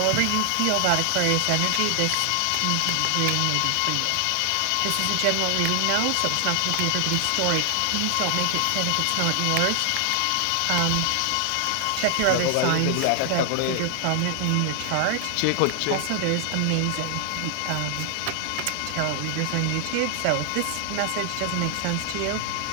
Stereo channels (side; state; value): both; different; correlation 0.00